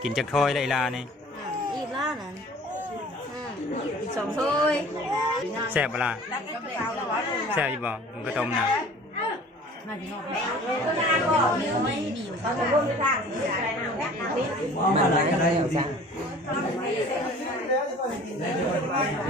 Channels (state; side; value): normal; both; correlation 0.47